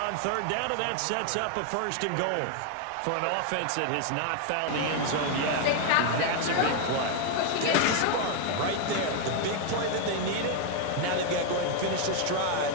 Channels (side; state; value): both; different; correlation 0.00